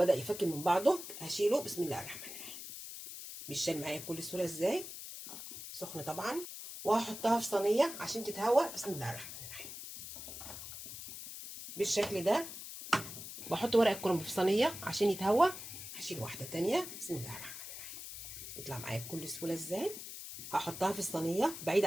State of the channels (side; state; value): left; noise; hiss, 10 dB below the sound